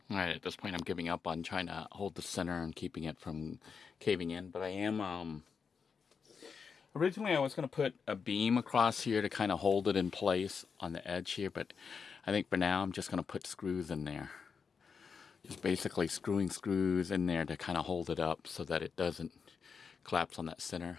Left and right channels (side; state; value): right; quieter; 5.9 dB